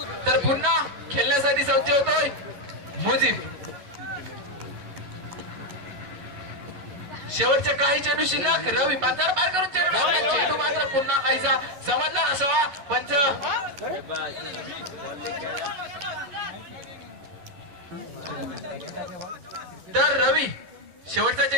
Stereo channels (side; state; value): left; late; 11 ms